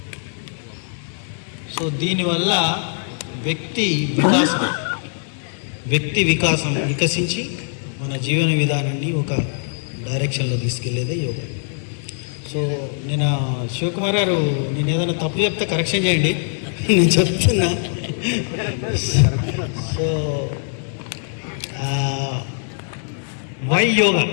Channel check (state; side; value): silent; right; digital silence